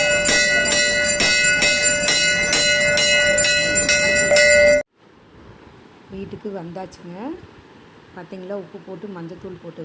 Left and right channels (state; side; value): identical; both; correlation 1.00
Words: வீட்டுக்கு வந்தாச்சுங்க. பார்த்தீங்களா, உப்பு போட்டு மஞ்சத்தூள் போட்டு